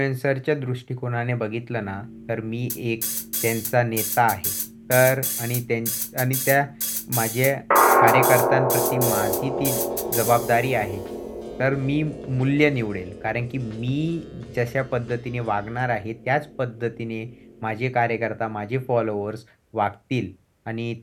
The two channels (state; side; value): identical; both; correlation 1.00